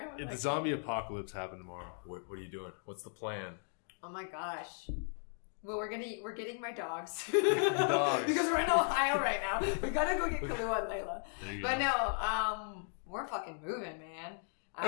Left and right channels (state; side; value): silent; right; 54 dB below the other